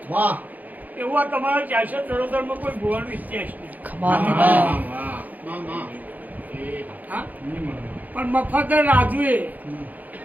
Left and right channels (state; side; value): late; left; 0.081 ms